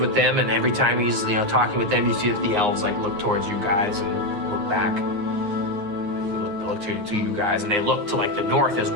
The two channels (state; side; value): late; left; 9.6 ms